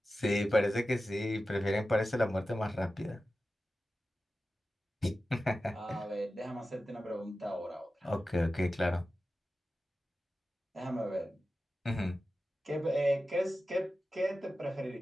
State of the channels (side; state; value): both; normal; correlation 0.93